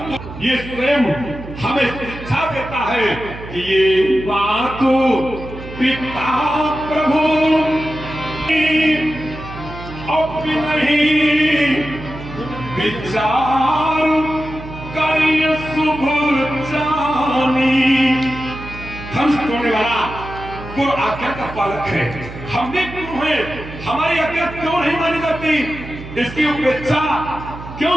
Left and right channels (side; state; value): right; noise; hum, 12 dB below the sound